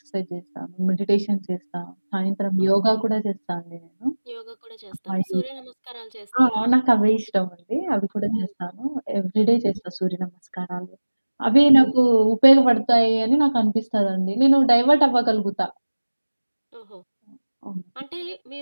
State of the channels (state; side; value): inverted; both; correlation -1.00